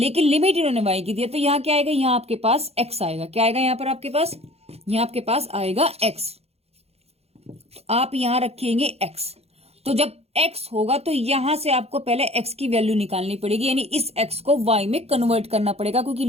लिमिट इन्होंने y की दी है, तो यहां क्या आएगा, यहां आपके पास x आएगा। क्या आएगा यहां पर आपके पास, यहां आपके पास आएगा x, तो आप यहां रखेंगे x। तो जब x होगा तो यहां से आपको पहले x की वैल्यू निकालनी पड़ेगी, यानी इस x को y में कन्वर्ट करना पड़ेगा, क्योंकि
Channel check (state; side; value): late; left; 0.30 ms